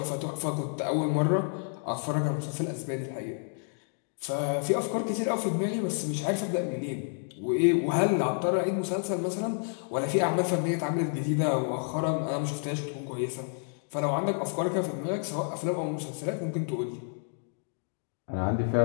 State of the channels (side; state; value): right; silent; 58 dB below the other